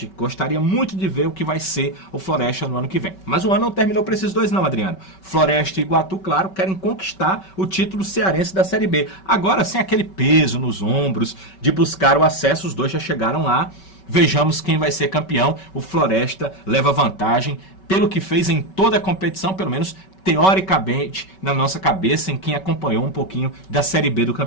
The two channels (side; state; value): right; late; 5.3 ms